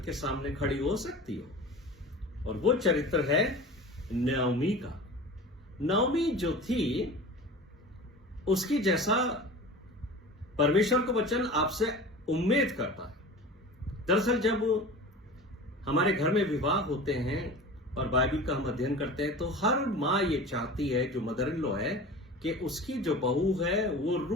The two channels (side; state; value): both; normal; correlation 0.36